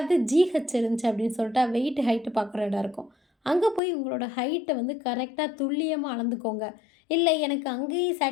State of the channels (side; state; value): right; drops out; at 3.8 s